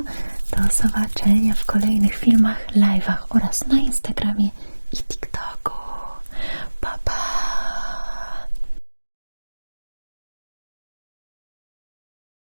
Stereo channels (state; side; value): inverted; both; correlation -1.00